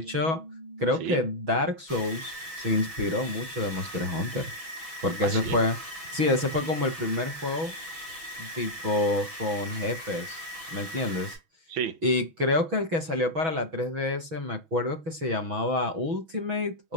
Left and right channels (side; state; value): left; late; 6.2 ms